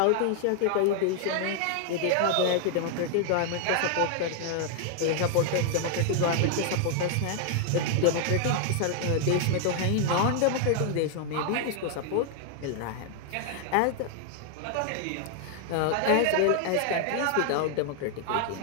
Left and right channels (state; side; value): different; both; correlation 0.00